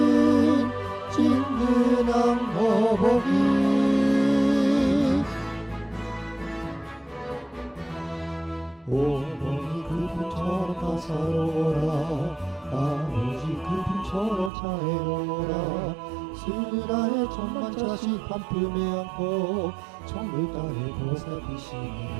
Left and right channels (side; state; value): left; drops out; at 14.5 s